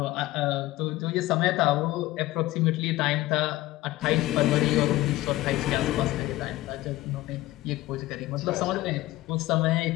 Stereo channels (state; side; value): quieter; right; 17.3 dB